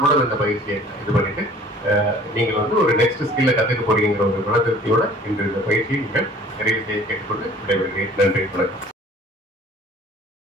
இந்த பயிற்சியை இது பண்ணிட்டு நீங்கள் வந்து ஒரு நெக்ஸ்ட் ஸ்கில்ல கற்றுக்க போறீங்கிற ஒரு மன திருப்தியோட இன்று இந்த பயிற்சியை நீங்கள் நிறைவு செய்ய கேட்டுக்கொண்டு விடைபெறுகிறேன். நன்றி, வணக்கம்.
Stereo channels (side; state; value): both; normal; correlation 0.51